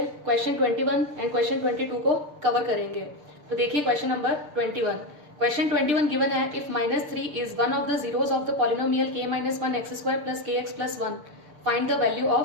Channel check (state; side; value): late; left; 6.7 ms